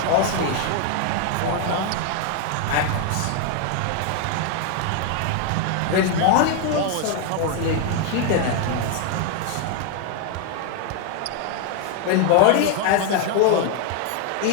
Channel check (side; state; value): both; different; correlation 0.00